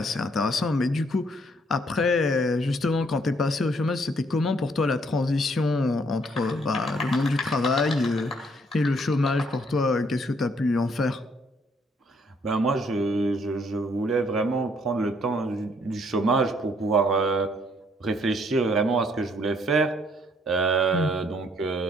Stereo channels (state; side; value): normal; both; correlation 0.67